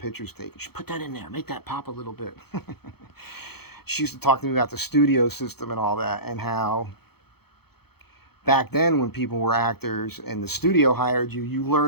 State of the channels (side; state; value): right; late; 0.96 ms